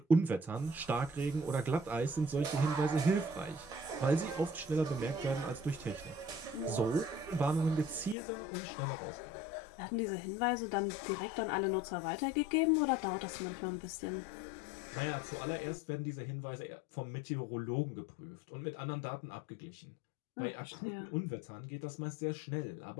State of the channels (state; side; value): drops out; right; at 8.2 s